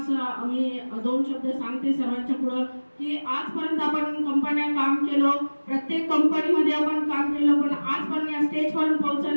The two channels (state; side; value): inverted; both; correlation -1.00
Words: मी 2 शब्द सांगते सर्वांच्या पुढं की आजपर्यंत आपण कंपन्या काम केलं, प्रत्येक कंपनीमध्ये आपण काम केलं, पण आजपर्यंत या स्टेजपर्यंत